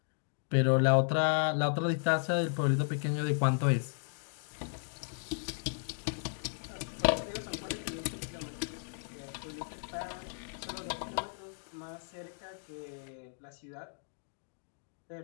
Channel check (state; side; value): silent; right; digital silence